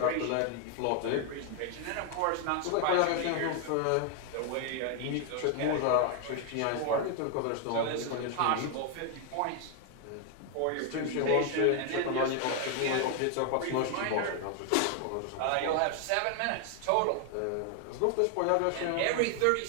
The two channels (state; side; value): different; both; correlation 0.00